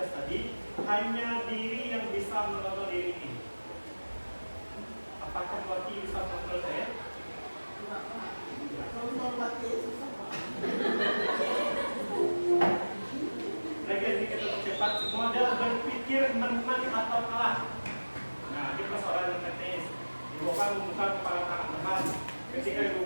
tadi, hanya diri yang bisa mengontrol diri ini. Apakah Wati bisa mengontrol saya? Lagi kita percepat, model berpikir menang atau kalah. Nah, ini persoalan teknis. Ibu akan membuka kepala tangan teman. Ketika ibu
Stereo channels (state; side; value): inverted; both; correlation -1.00